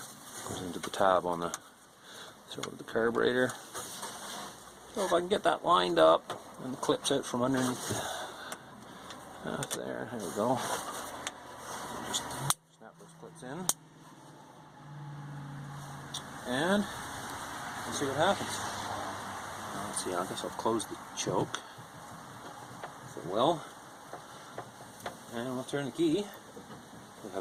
goes into the tab on the throat of the carburetor. So if I can get that lined up and the clips out from underneath there we go. Just snap those clips in. And we'll see what happens. Let's see, I guess I'll close the choke, if it will. And we'll turn the key. We'll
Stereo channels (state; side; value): identical; both; correlation 1.00